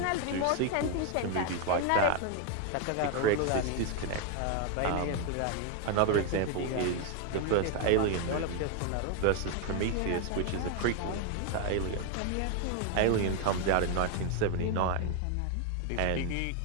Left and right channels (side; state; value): both; different; correlation 0.01